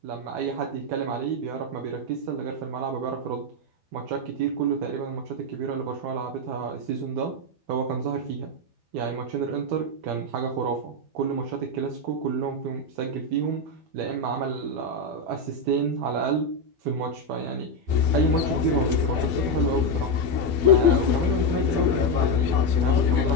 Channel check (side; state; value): left; late; 12 ms